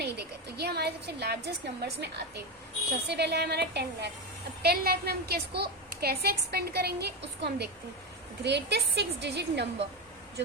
देखा। तो ये हमारे सबसे लार्जेस्ट नंबर्स में आते हैं। सबसे पहले है हमारा 10 लाख। अब 10 लाख में हम किसको कैसे एक्सपेंड करेंगे उसको हम देखते हैं। ग्रेटेस्ट 6 डिजिट नंबर जो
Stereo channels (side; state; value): both; normal; correlation 0.14